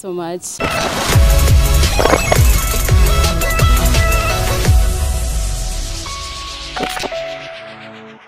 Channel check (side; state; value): both; identical; correlation 1.00